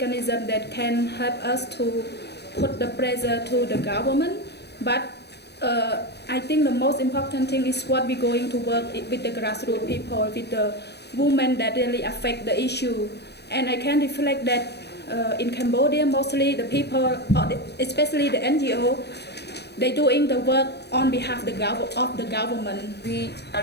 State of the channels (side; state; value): right; late; 0.48 ms